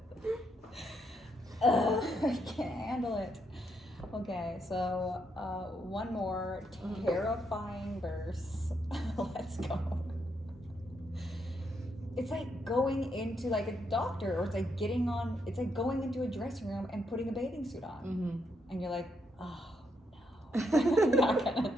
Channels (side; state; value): both; normal; correlation 0.77